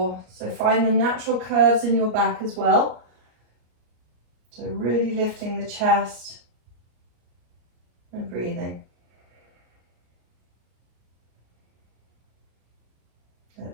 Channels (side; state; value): left; late; 33 ms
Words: So find the natural curves in your back as well. So really lifting the chest and breathing. Let